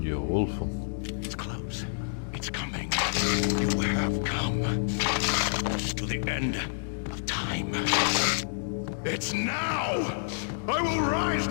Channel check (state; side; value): silent; right; digital silence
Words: diyor, wolf'um. It's close. It's coming. You have come to the end of time. It's now. I will rise